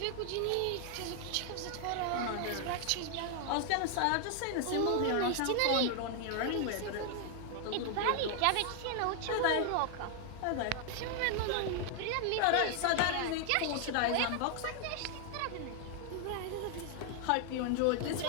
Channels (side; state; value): both; different; correlation 0.00